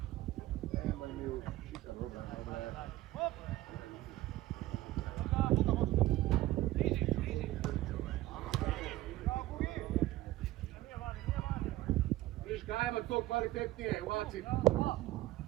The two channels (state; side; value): quieter; left; 16.2 dB